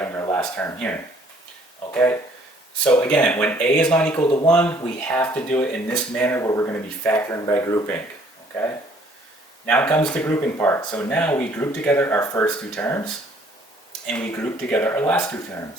our last term here. Okay? So again, when A is not equal to 1, we have to do it in this manner where we're going to be factoring by grouping. Okay? Now comes the grouping part. So now we group together our first two terms, and we group together our last two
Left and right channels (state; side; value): normal; both; correlation 0.60